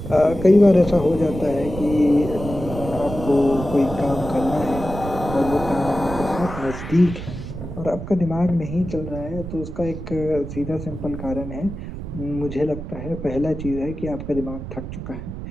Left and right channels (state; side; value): noise; right; rumble, 8 dB below the sound